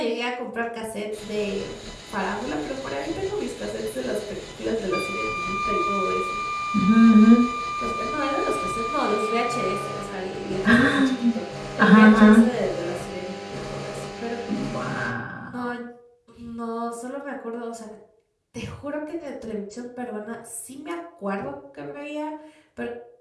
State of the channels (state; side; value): identical; both; correlation 1.00